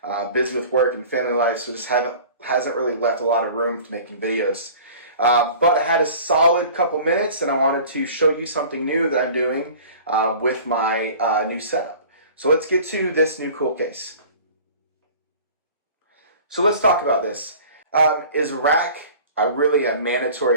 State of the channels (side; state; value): both; inverted; correlation -0.44